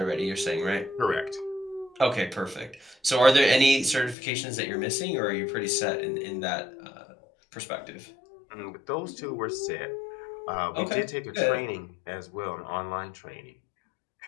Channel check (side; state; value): right; drops out; at 4.2 s